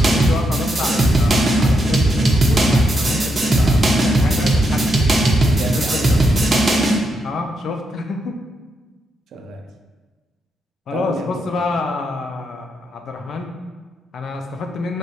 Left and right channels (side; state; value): both; normal; correlation 0.81